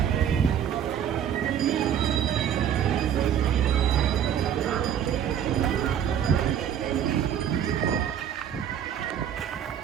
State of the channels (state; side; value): quieter; left; 9.3 dB